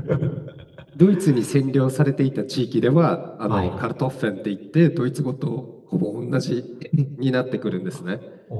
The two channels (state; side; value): identical; both; correlation 1.00